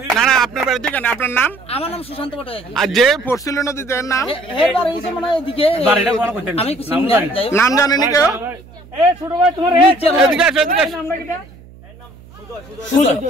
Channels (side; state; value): right; noise; hum, 22 dB below the sound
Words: না না আপনার বাড়ি থেকে আপনার নাম আমার নাম সুশান্ত পটে আর যে পড়ছিল নদীতে নাম এর বাড়ি এসে মানে এদিকে বাড়িটা কোন কইতেন আমি কিছু নাম জানেন কেউ এ ছোট ভাই তোমার এদিকে আসো এদিকে